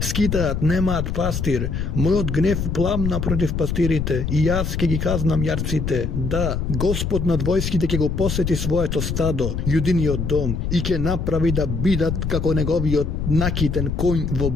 скитаат, немаат пастир. Мојот гнев пламна против пастирите и јас ќе ги казнам јарците. Да, Господ над војските ќе го посети своето стадо, Јудиниот дом, и ќе направи да бидат како неговиот накитен коњ во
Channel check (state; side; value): noise; left; rumble, 2 dB below the sound